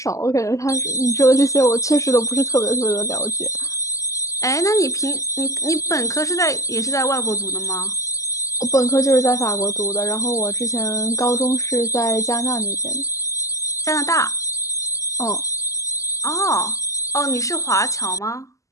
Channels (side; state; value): right; late; 0.16 ms